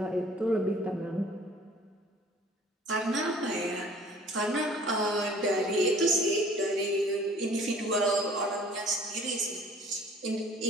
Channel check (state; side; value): normal; both; correlation 0.51